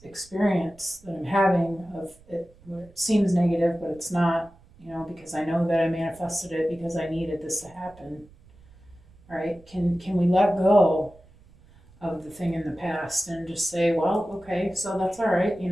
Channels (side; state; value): right; noise; rumble, 26 dB below the sound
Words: experience that I'm having of it, where it seems negative, but it's not, because I know that I manifested it because I needed this to happen. All right, can we let go of the thing in the past and just say, well, okay, so that's all right,